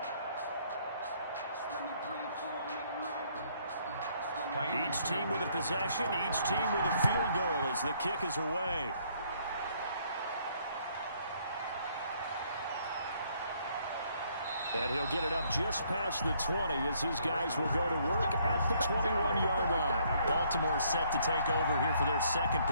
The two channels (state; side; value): inverted; both; correlation -0.67